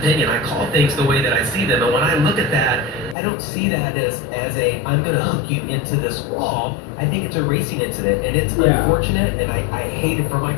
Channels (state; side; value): drops out; right; at 3.2 s